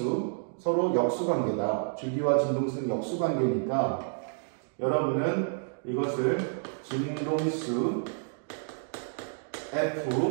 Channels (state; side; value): silent; left; digital silence